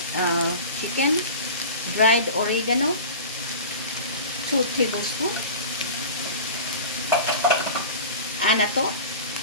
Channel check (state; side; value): inverted; both; correlation -0.35